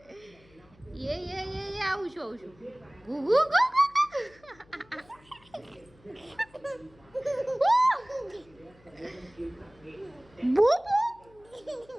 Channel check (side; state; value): left; noise; hum, 28 dB below the sound